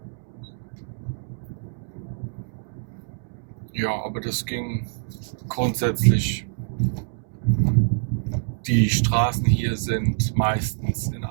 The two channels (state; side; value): silent; left; 62 dB below the other